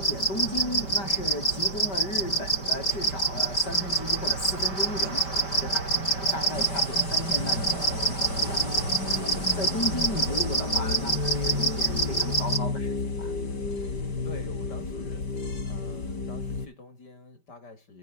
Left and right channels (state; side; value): late; right; 5.1 ms